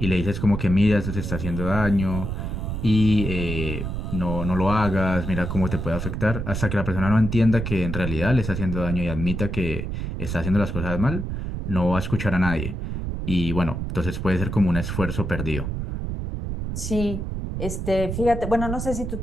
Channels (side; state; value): right; noise; rumble, 4 dB below the sound